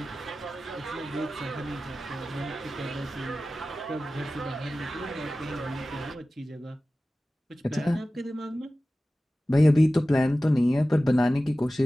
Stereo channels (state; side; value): normal; both; correlation 0.96